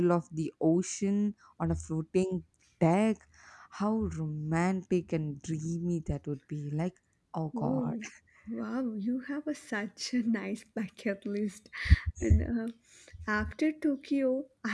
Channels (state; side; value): identical; both; correlation 1.00